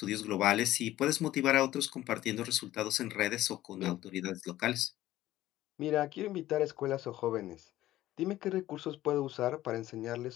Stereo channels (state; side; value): quieter; right; 14.9 dB